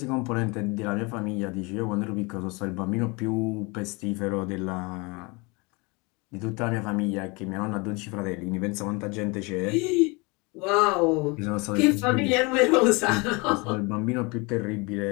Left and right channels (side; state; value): right; quieter; 27.8 dB